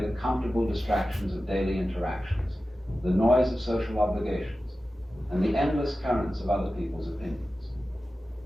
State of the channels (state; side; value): normal; both; correlation 0.94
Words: comfortable distractions of daily interactions, the noise of social obligations, and the endless currents of other people's opinions.